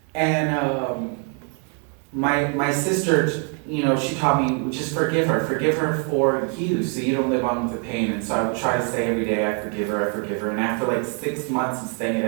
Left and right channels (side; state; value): left; quieter; 39.8 dB